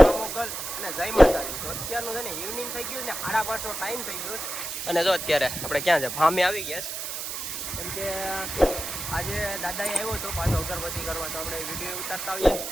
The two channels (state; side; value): noise; right; hiss, 5 dB below the sound